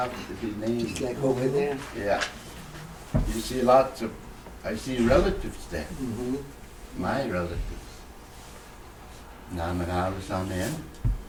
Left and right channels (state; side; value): identical; both; correlation 1.00